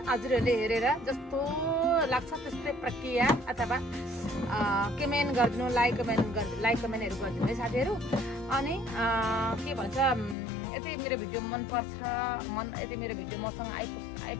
हजुरहरूले हेरेर जस्तो लाग्छ त्यस्तै प्रक्रिया अथवा कमेन्ट गरिदिनु, लाइक कमेन्टहरू गरिदिनु है साथीहरू। अनि के भन्छ, यदि मेरो भिडियो मनपर्छ, यदि मेरो भिडियो मसँग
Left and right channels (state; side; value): drops out; right; at 10.4 s